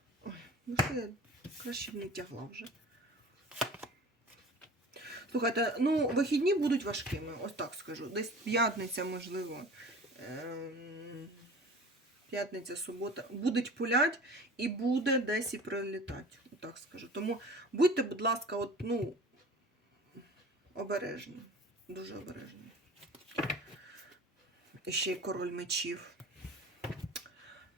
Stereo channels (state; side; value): normal; both; correlation 0.41